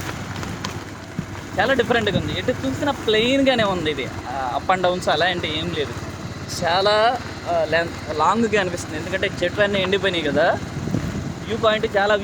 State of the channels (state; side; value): identical; both; correlation 1.00